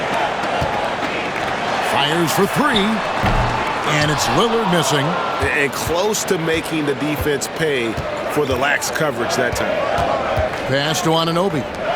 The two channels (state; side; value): identical; both; correlation 1.00